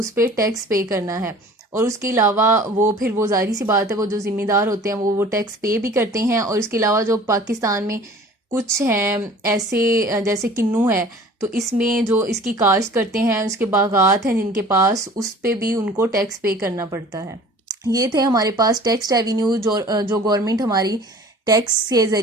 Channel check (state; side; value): normal; both; correlation 0.46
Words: पर टैक्स पे करना है। और उसके अलावा वो फिर वो ज़ाहिर सी बात है वो जो ज़िम्मेदार होते हैं वो टैक्स पे भी करते हैं। और इसके अलावा जो पाकिस्तान में कुछ हैं ऐसे जैसे किन्नू है, तो इसमें जो इसकी काश्त करते हैं उसके बागात हैं जिनके पास, उस पे भी उनको टैक्स पे करना पड़ता है। ये थे हमारे पास टैक्स रेवेन्यू जो गवर्नमेंट हमारी टैक्स के